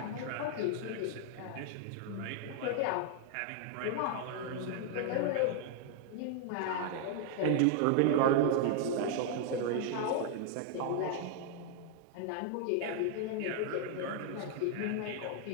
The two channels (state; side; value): different; both; correlation 0.00